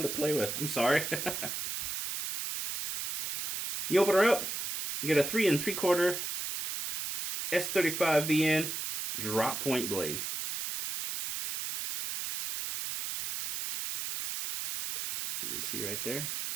to play with. I'm sorry. You open her up. You get a 3 3/4 S35 VN drop point blade. As you can see right there.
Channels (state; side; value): noise; right; hiss, 4 dB below the sound